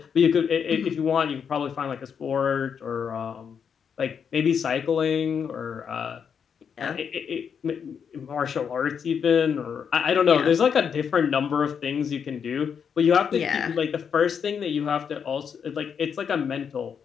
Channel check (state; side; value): quieter; right; 7.1 dB